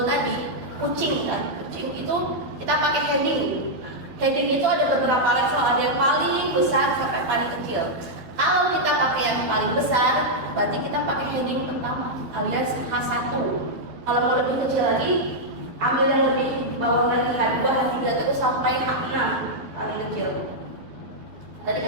tadi, kucing kan, kucing itu kita pakai heading. Heading itu ada beberapa level, ada yang paling besar sampai paling kecil. Kalau kita pakai yang paling besar, berarti kita pakai heading pertama alias H1. Kalau mau lebih kecil lagi, ambil yang lebih bawah lagi, H2, H3 terus sampai H6 paling kecil. Tadi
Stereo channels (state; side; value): late; left; 12 ms